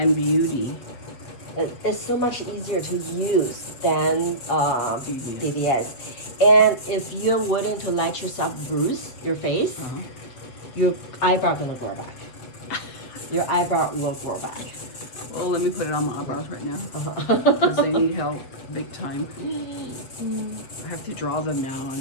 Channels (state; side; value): late; right; 7.8 ms